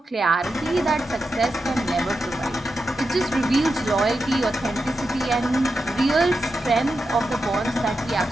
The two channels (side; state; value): both; normal; correlation 0.89